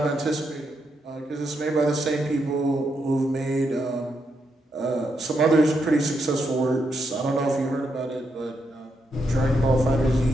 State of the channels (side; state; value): both; normal; correlation 0.81